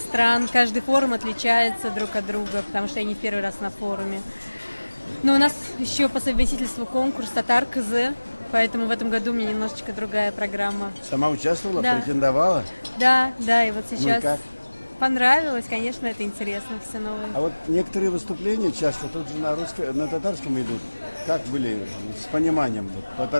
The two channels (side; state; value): both; inverted; correlation -1.00